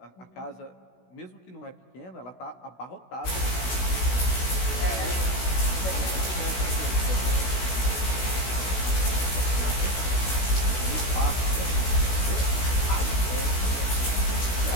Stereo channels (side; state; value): right; late; 16 ms